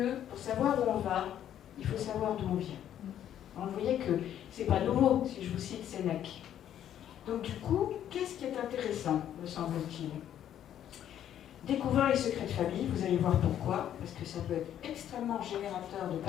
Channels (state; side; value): quieter; right; 10.6 dB